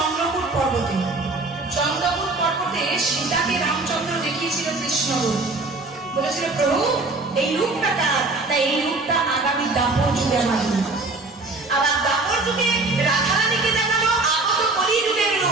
পর্বতে। চন্দ্রপুর পর্বতে সীতাকে রামচন্দ্র দেখিয়েছিল কৃষ্ণ রূপ বলেছিল প্রভু এই রূপটা কার না এই রূপটা আগামী দাপর যুগে আমার রূপ। আবার দাপর যুগে রাধারানীকে দেখালো আগত কলিযুগের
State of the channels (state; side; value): quieter; left; 3.3 dB